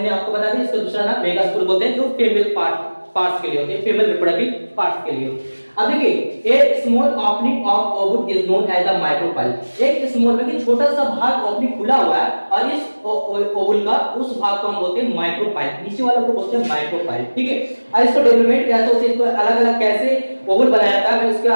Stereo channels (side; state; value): both; inverted; correlation -1.00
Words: आपको बताया था इसका दूसरा नाम मेगास्पोर बोलते हैं, जो फीमेल पार्ट्स के लिए होते हैं, फीमेल रिप्रोडक्टिव पार्ट्स के लिए। अब देखिए एक small opening of ovule is known as the micropyle. एक स्मॉल में छोटा सा भाग ओपनिंग खुला हुआ है और इस ओवल का उस भाग को हम बोलते हैं माइक्रोपाइल, नीचे वाले को बोलते हैं माइक्रोपाइल, ठीक है। और इसको डेवलपमेंट कैसे होती है, इसको अलग अलग कैसे ओवल बनाया जाता है, मैं इसके